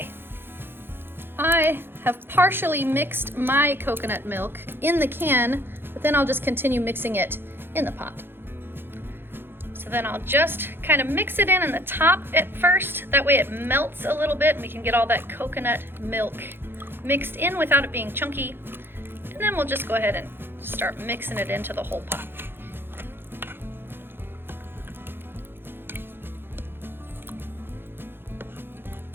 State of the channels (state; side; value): late; left; 0.10 ms